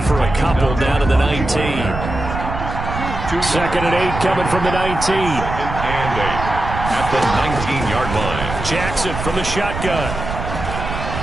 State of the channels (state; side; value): noise; right; rumble, 6 dB below the sound